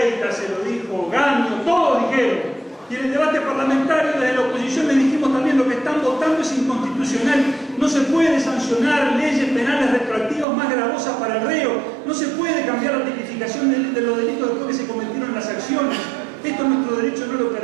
se lo dijo Gaño, todos dijeron. Y en el debate parlamentario desde la oposición le dijimos también: lo que están votando es inconstitucional. No se puede sancionar leyes penales retroactivas más gravosas para el reo. No se puede cambiar la tipificación de los delitos después que se cometieron en las acciones. Esto nuestro derecho no lo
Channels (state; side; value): drops out; left; at 10.5 s